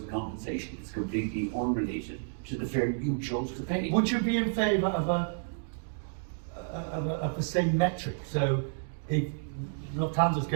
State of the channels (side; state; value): left; silent; digital silence